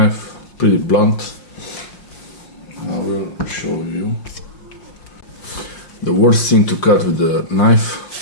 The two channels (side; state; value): right; late; 5.6 ms